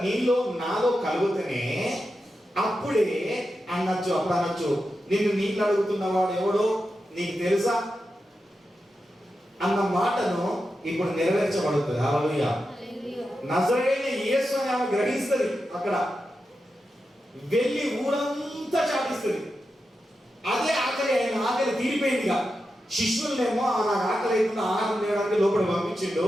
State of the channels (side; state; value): both; normal; correlation 0.89